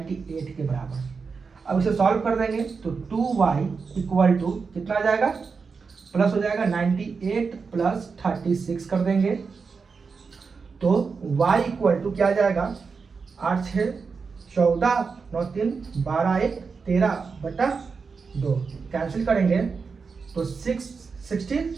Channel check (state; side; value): quieter; left; 5.1 dB